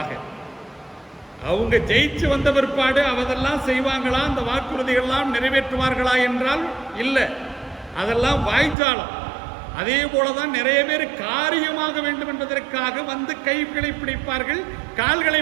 அவங்க ஜெயிச்சு வந்த பிற்பாடு அவதெல்லாம் செய்வாங்களா, அந்த வாக்குறுதிகள்லாம் நிறைவேற்றுவார்களா என்றால் இல்லை, அதெல்லாம் வாய்ச்சாலம். அதே போலதான் நிறைய பேர் காரியமாக வேண்டும் என்பதற்காக வந்து கைகளை பிடிப்பார்கள், கால்களை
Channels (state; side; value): drops out; left; at 8.8 s